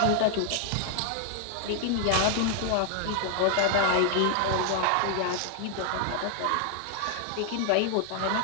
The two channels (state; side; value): different; both; correlation 0.00